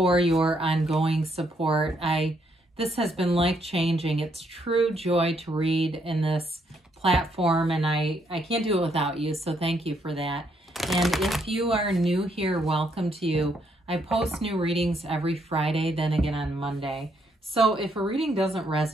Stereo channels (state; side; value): normal; both; correlation 0.73